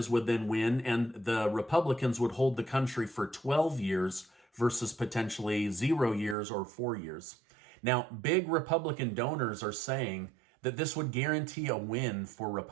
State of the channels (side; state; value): left; drops out; at 6.4 s